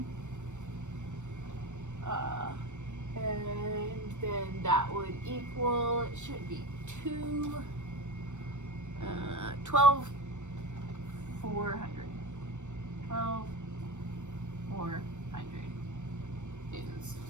And then that would equal, it should be 12,400 newtons.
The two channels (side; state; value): left; late; 0.84 ms